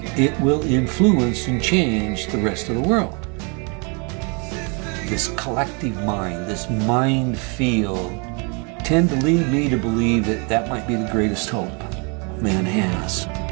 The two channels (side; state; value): left; quieter; 34.0 dB